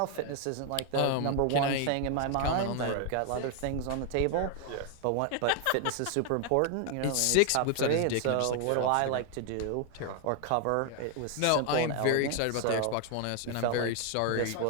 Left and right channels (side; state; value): both; different; correlation 0.01